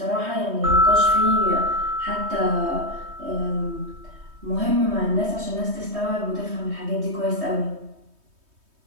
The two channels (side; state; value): left; late; 3.2 ms